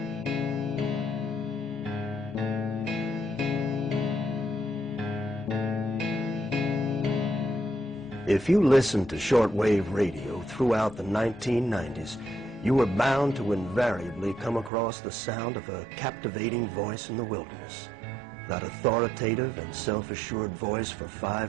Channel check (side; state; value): left; drops out; at 14.7 s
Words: If you listened to shortwave radio throughout the 1990s, you were bound to invariably come across the sound of a captivating voice in the wilderness. That authoritative and self-assured voice for